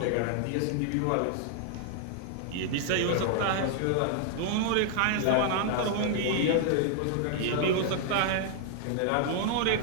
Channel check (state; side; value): different; both; correlation -0.01